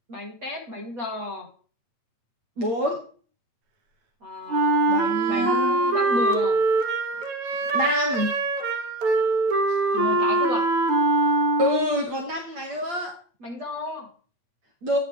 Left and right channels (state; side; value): late; left; 8.6 ms